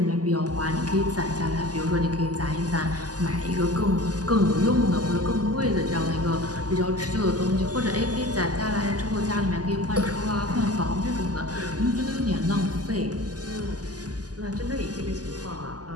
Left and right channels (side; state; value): left; late; 0.68 ms